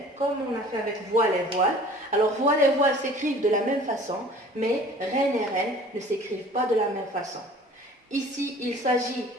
comme on a fait avec voile et voile. Alors, voile et voile s'écrivent de la même façon, mais reine et reine ne s'écrivent pas de la même façon. Ici, il s'agit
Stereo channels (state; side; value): normal; both; correlation 0.47